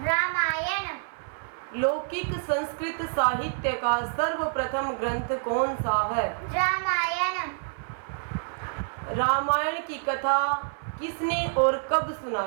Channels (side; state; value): left; silent; 60 dB below the other